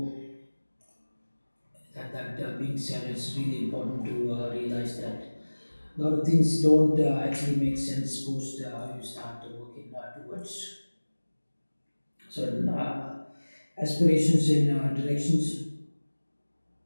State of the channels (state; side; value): inverted; both; correlation -1.00